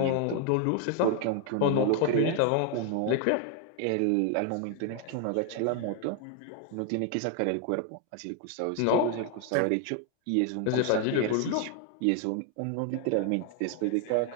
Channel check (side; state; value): both; different; correlation 0.00